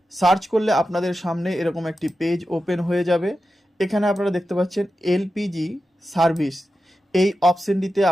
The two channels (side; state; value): both; normal; correlation 0.91